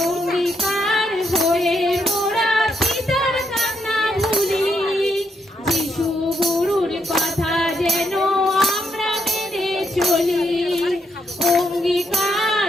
অঙ্গীকার হয়ে মোরা পিতার কান্না ভুলি, যিশু গুরুর কথা যেন আমরা মেনে চলি।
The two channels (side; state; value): both; normal; correlation 0.78